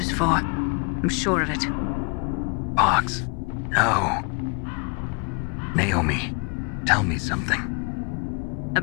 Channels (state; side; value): quieter; right; 33.3 dB